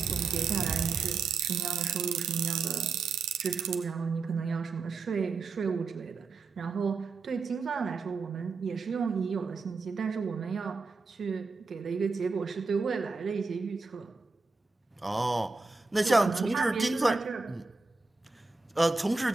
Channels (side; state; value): left; quieter; 4.3 dB